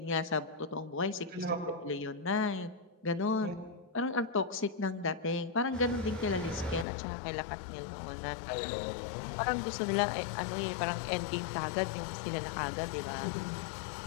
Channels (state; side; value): drops out; right; at 6.9 s